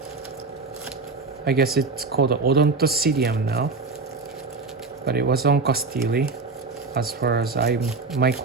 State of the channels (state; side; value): quieter; left; 4.0 dB